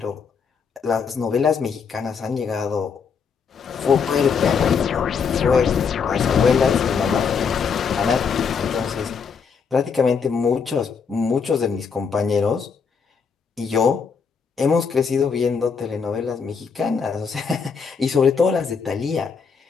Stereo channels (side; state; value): right; quieter; 5.9 dB